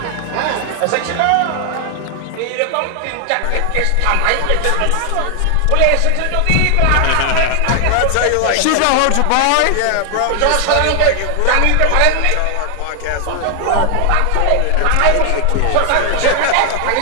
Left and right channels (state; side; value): different; both; correlation 0.00